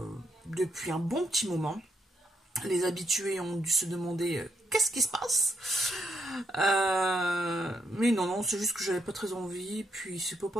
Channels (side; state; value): both; normal; correlation 0.76